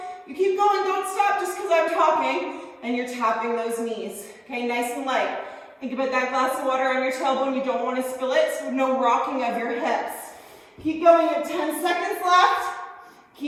You keep going, don't stop just because I'm talking. And you're tapping those knees. Okay, nice and light. Think about that glass of water on your tailbone. You don't want to spill it, so no rocking of your hips. Keep going, you have 10 seconds left.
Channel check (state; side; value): identical; both; correlation 1.00